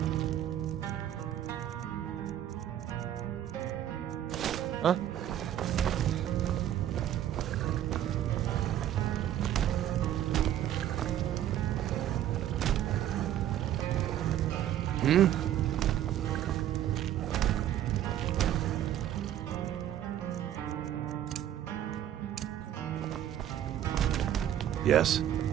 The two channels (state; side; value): quieter; left; 11.4 dB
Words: Huh? Hmm? Yes?